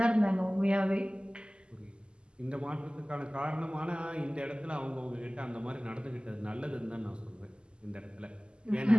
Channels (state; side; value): late; left; 0.050 ms